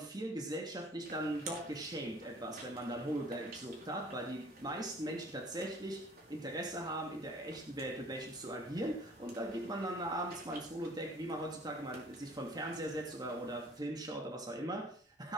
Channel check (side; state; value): both; normal; correlation 0.52